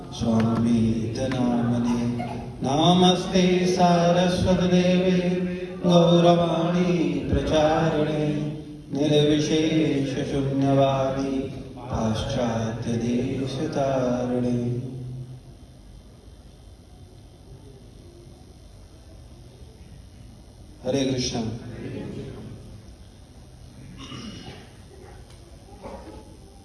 स्वामिते नामिने। नमस्ते सारस्वती देवे गौरवाणी प्रचारिणे निर्विशेष शून्यवादी पाश्चात्य देशतारिणे। हरे कृष्ण।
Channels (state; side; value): identical; both; correlation 1.00